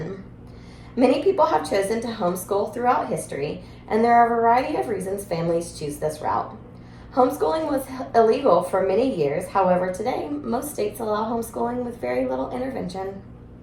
Many people have chosen to homeschool throughout history, and there are a variety of reasons families choose this route. Homeschooling was illegal for many years, however, today most states allow homeschooling with very little intervention.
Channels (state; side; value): identical; both; correlation 1.00